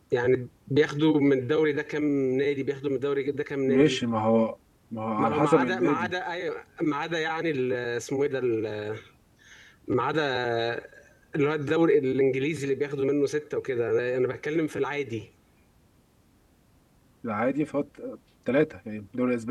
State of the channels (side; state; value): both; identical; correlation 1.00